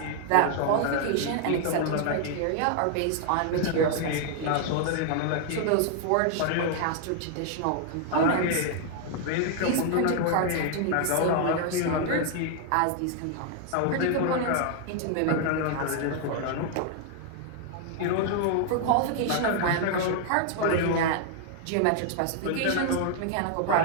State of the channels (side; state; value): both; different; correlation 0.00